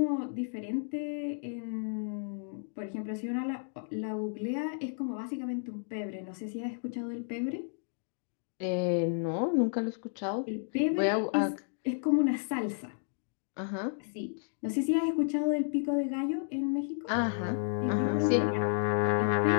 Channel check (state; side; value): silent; right; digital silence